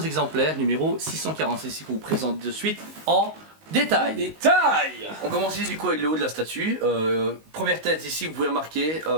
exemplaires, numéro 646 ici qu'on vous présente de suite en détail. Détail. On commence ici du coup avec le haut de la statue. Première tête ici, vous pouvez remarquer,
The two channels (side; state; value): left; late; 19 ms